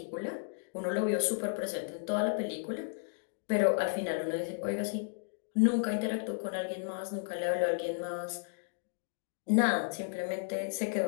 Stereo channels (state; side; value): silent; right; digital silence